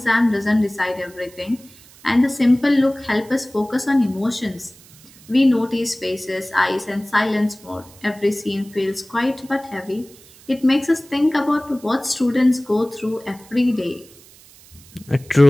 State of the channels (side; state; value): right; noise; hiss, 24 dB below the sound